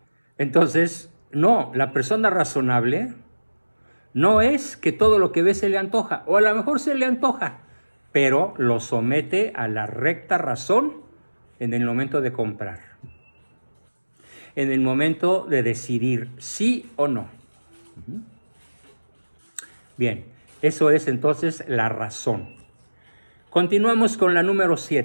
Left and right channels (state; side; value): inverted; both; correlation -1.00